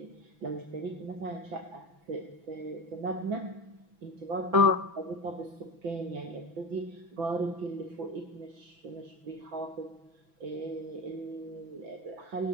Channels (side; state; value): left; late; 6.0 ms